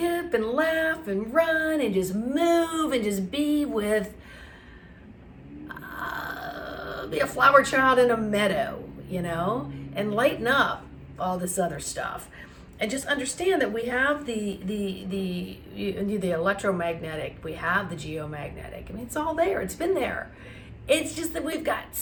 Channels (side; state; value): both; identical; correlation 1.00